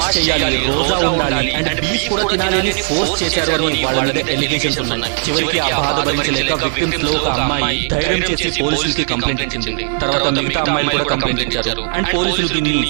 చేయాలి, రోజా ఉండాలి అండ్ బీఫ్ కూడా తినాలి అని ఫోర్స్ చేశారు అని వాళ్ళ మీద ఎలిగేషన్స్ ఉన్నాయి. చివరికి ఆ బాధ భరించలేక విక్టిమ్స్ లో ఒక అమ్మాయి ధైర్యం చేసి పోలీసులకి కంప్లైంట్ ఇచ్చింది. తర్వాత మిగతా అమ్మాయిలు కూడా కంప్లైంట్ ఇచ్చారు అండ్ పోలీసులు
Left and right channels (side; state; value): left; silent; 58 dB below the other